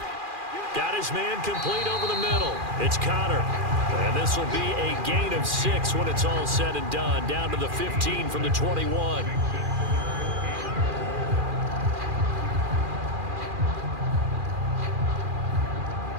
Got his man complete over the middle. It's Connor. And this will be a gain of 6 when it's all said and done. Down to the 15 from the 21.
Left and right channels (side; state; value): left; late; 2.4 ms